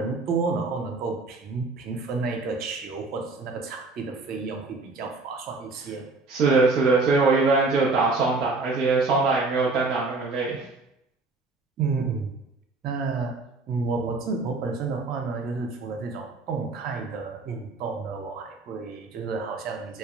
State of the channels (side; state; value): left; quieter; 3.6 dB